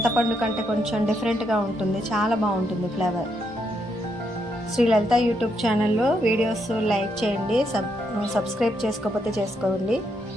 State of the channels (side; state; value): both; normal; correlation 0.78